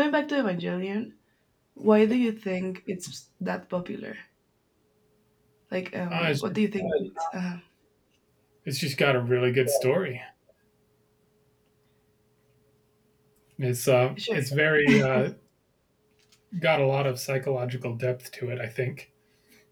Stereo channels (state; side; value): identical; both; correlation 1.00